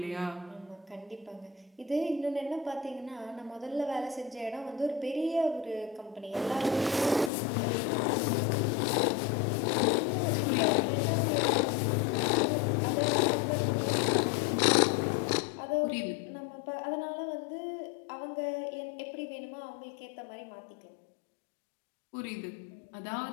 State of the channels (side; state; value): right; drops out; at 7.3 s